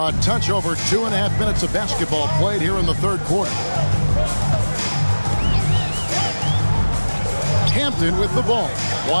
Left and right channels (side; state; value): both; inverted; correlation -1.00